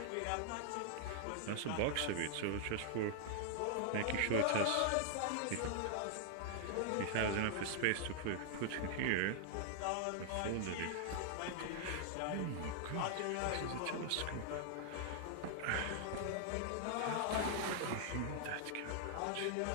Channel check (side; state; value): both; different; correlation 0.00